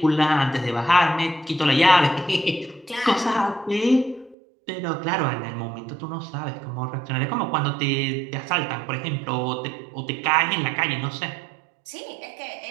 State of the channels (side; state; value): left; drops out; at 4.4 s